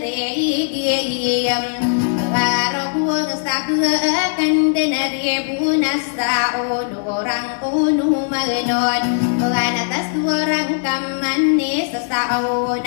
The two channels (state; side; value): silent; right; 67 dB below the other